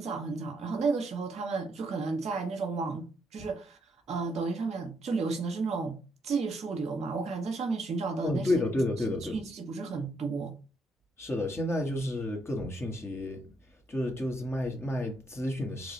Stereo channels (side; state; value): both; normal; correlation 0.76